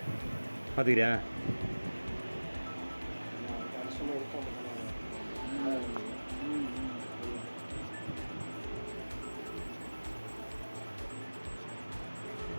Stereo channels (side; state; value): both; inverted; correlation -1.00